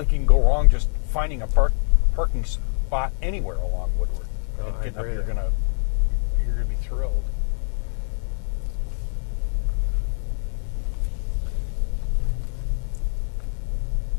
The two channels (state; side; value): silent; right; 57 dB below the other